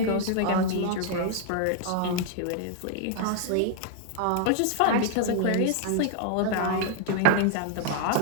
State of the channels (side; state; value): both; different; correlation 0.00